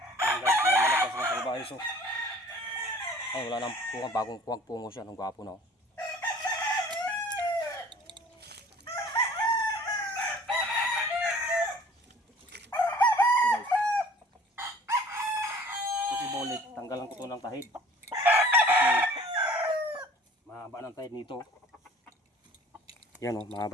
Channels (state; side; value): normal; both; correlation 0.50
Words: Ayan guys, manok guys ng salbahe so. Ay, wala nang punga, bagong kuwag pungo siya. Ang gwapo na oh. Bulik, tanggalan ko to ng tahid kasi mahaba ng tahid nito. Yan o,